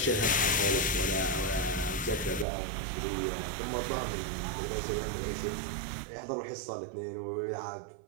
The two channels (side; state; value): left; drops out; at 2.5 s